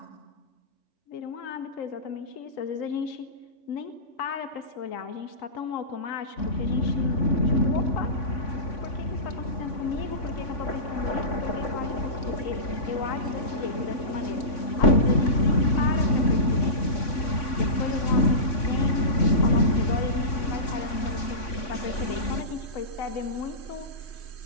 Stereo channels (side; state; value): right; late; 3.5 ms